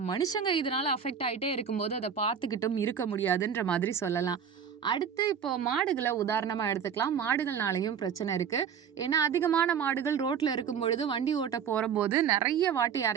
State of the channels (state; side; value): quieter; left; 7.5 dB